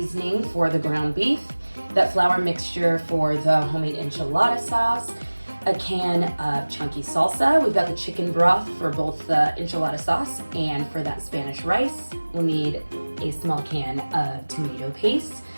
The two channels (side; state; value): both; inverted; correlation -1.00